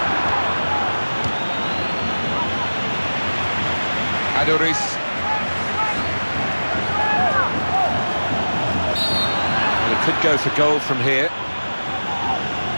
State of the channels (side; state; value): both; inverted; correlation -1.00